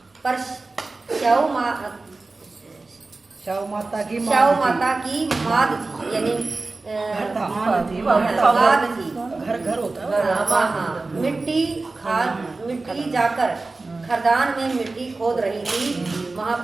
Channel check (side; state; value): left; quieter; 3.5 dB